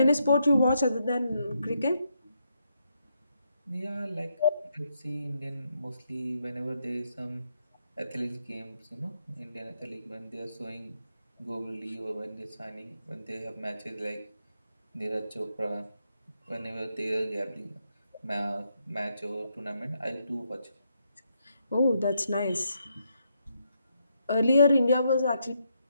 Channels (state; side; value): inverted; both; correlation -0.79